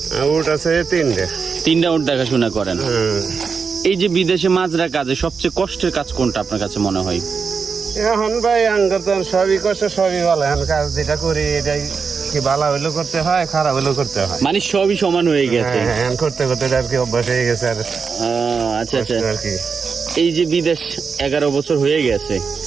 উঠ আছে 3টা। 3টা উঠ দেখাশোনা করেন। হুম। এই যে বিদেশে মাজরা কাজে সবচেয়ে কষ্টের কাজ কোনটা আপনার কাছে মনে হয়? এখন ভাই আঙ্গর তো সবই কষ্ট, সবই ভালো। এখন কাজ যেটা করি এটাই কি ভালো হইলেও করতে হয়, খারাপ হইলেও করতে হয়। মানে সবই সমান হয়ে গেছে। হ্যাঁ, এখন করতে করতে আর কি অভ্যাস হয়ে গেছে। আর আচ্ছা আচ্ছা। আর কি এই যে বিদেশ 11 বছর হয়ে গেছে,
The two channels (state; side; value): quieter; left; 5.5 dB